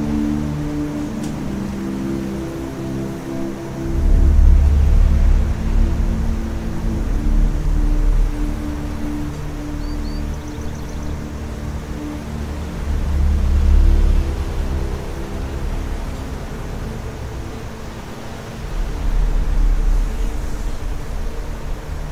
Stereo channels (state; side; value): identical; both; correlation 1.00